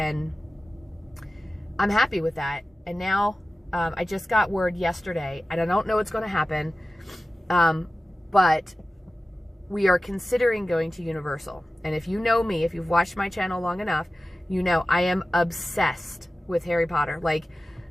I'm happy with that. And now I just got word yesterday. And I don't know what's going to happen. But we are considering going to Universal. And if you know me, if you've watched my channel long enough, you know I am obsessed with Harry Potter. Like,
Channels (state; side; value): normal; both; correlation 0.96